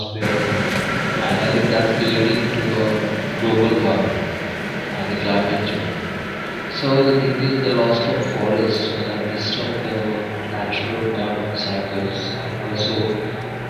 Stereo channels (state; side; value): identical; both; correlation 1.00